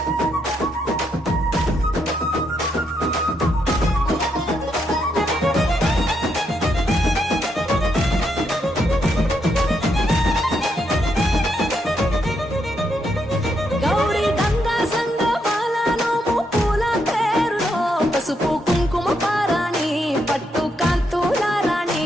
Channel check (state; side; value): normal; both; correlation 0.78